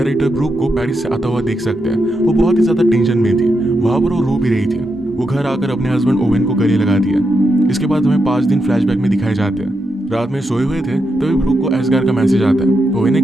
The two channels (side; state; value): both; normal; correlation 0.84